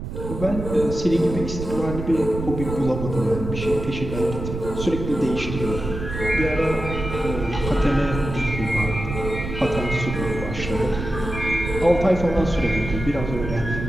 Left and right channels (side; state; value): right; noise; rumble, 7 dB below the sound